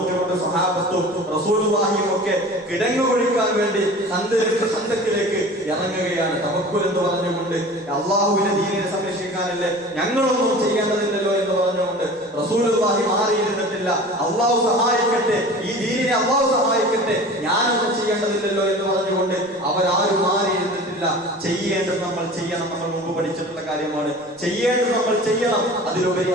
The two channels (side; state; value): both; normal; correlation 0.39